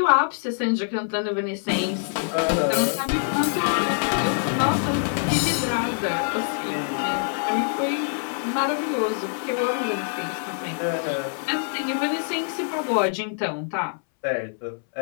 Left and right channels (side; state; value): right; silent; 62 dB below the other